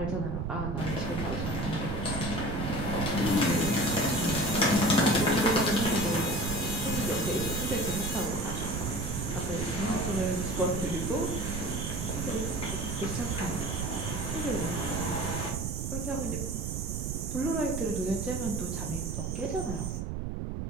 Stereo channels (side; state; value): right; noise; rumble, 3 dB below the sound